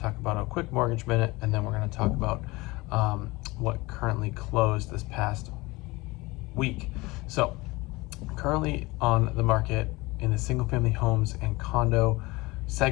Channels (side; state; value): right; quieter; 22.4 dB